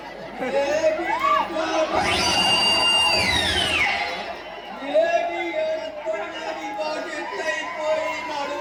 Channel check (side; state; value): both; identical; correlation 1.00